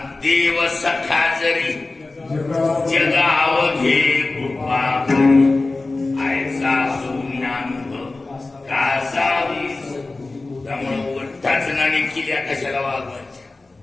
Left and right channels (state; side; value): quieter; right; 3.3 dB